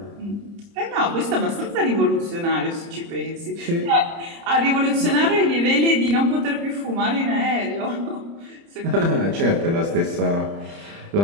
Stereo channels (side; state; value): left; late; 30 ms